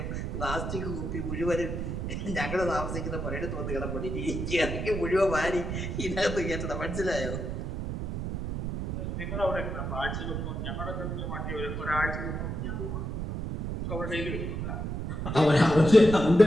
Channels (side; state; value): right; noise; rumble, 4 dB below the sound